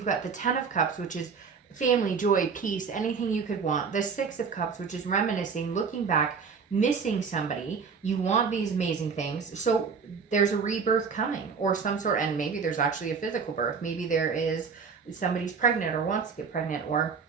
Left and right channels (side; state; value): left; quieter; 5.7 dB